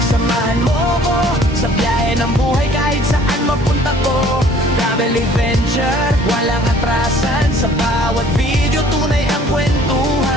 samahan mo ko sa biyahe ng buhay kahit saan mapunta ko. Travel adventure, walang atrasan, sa bawat video tunay ang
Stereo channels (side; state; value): both; normal; correlation 0.54